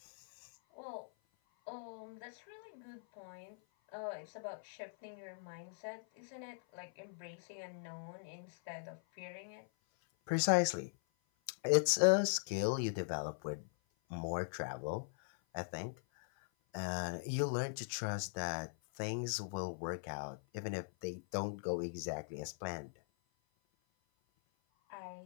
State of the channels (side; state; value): right; silent; 51 dB below the other